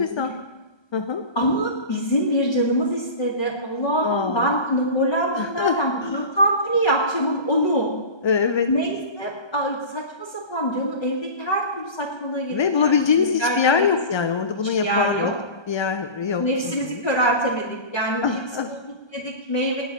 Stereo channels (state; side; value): late; right; 1.3 ms